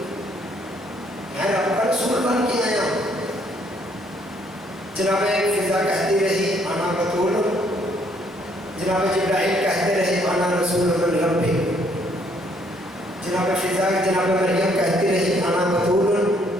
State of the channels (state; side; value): normal; both; correlation 0.67